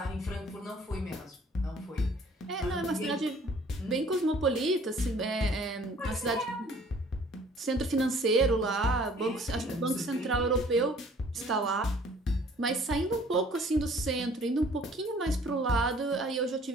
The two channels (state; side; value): normal; both; correlation 0.55